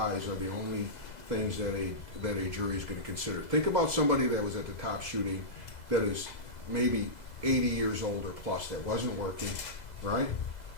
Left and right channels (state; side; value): late; right; 2.0 ms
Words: are the only things that a jury is going to consider. Think about somebody that was at the top shooting that is maybe 80 years old or plus, that wasn't working, right?